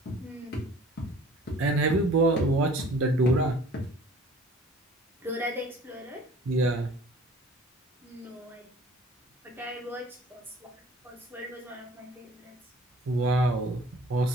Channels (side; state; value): both; normal; correlation 0.49